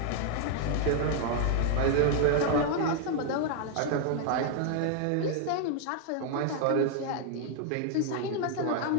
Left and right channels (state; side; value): different; both; correlation 0.00